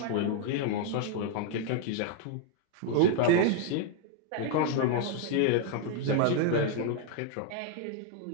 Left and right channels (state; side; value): different; both; correlation 0.00